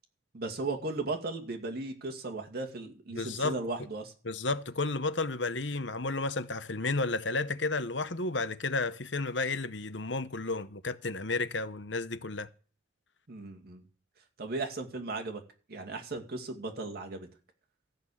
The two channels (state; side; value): normal; both; correlation 0.09